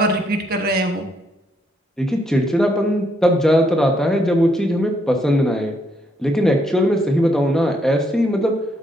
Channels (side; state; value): both; normal; correlation 0.74